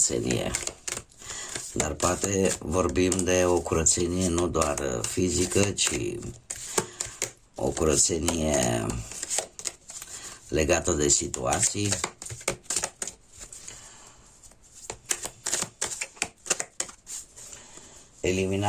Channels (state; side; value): identical; both; correlation 1.00